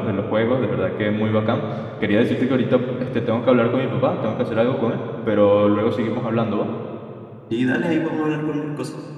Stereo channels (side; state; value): both; identical; correlation 1.00